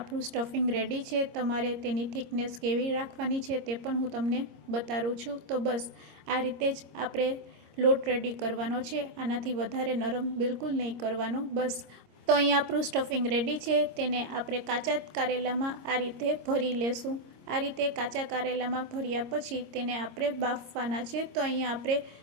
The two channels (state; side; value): late; left; 26 ms